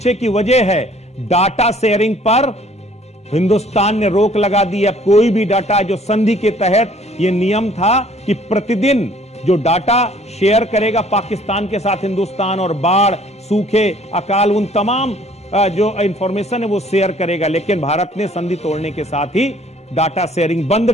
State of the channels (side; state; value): both; normal; correlation 0.58